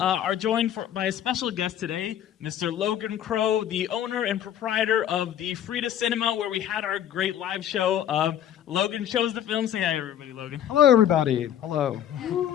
joined by a special guest today, Mr. Logan Crow, the owner and proprietor of the Frida Cinema, where we had our great live show. Logan shows the film. Say hi, everybody, Logan. Hello, everybody. Hello.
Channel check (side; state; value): right; quieter; 10.5 dB